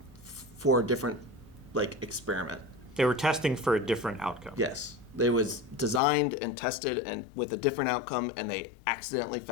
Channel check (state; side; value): drops out; right; at 6.0 s